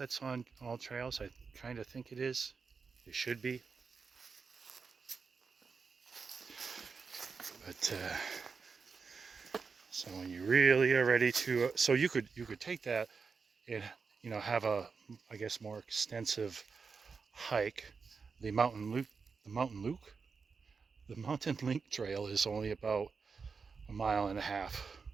on all trails. I kind of think it is. It should be. But so when you really are ready to, so you could take that and have a, I guess, more extensive hike. The Mountain Link Trail is only about 1.5 miles,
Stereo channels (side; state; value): left; quieter; 5.2 dB